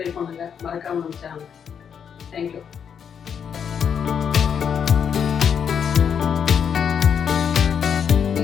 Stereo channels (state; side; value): quieter; right; 7.5 dB